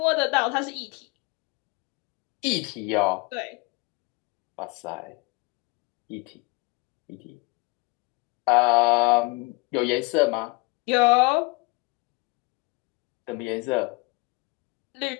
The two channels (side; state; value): right; quieter; 27.2 dB